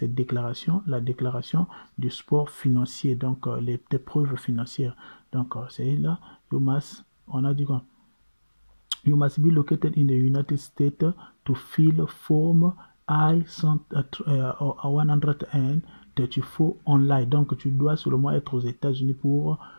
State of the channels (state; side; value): inverted; both; correlation -1.00